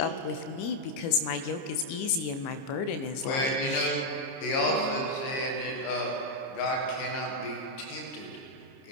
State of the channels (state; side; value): late; right; 30 ms